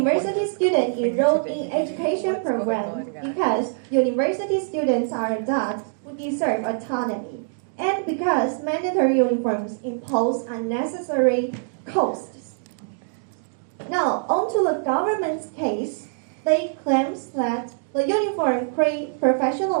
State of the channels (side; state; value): left; silent; digital silence